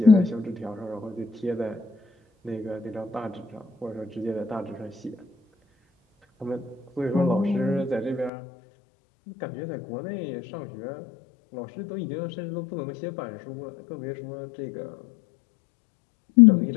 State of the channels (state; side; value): drops out; right; at 8.3 s